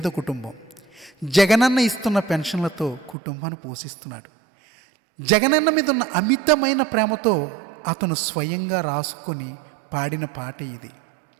కుటుంబం. జగనన్న ఇస్తున్న పెన్షన్లతో కుటుంబాన్ని పోషిస్తున్నాడు. జగనన్న మీద ఉన్న అమితమైన ప్రేమతో అతను స్వయంగా రాసుకొని పాడిన పాట ఇది.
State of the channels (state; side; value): drops out; left; at 3.2 s